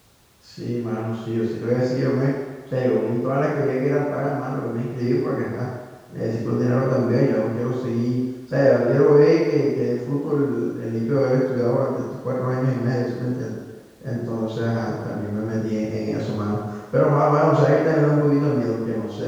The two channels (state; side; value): identical; both; correlation 1.00